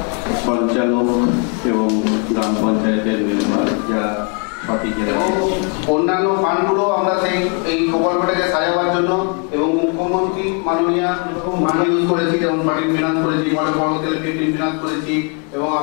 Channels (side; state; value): right; quieter; 36.0 dB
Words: সঞ্চালক এবং গ্রাম পঞ্চায়েতের মেম্বার যারা সঠিক অন্যান্য ফান্ডগুলো আমরা এই প্রকল্পটাকে সাজাবার জন্য এবং মুখ্যমন্ত্রী মাননীয় ইউজ করেছি, যেমন পার্টির ফিনান্স করেছি, মডেল পর্বতের পেন্টিং ফিনান্স করেছি এবং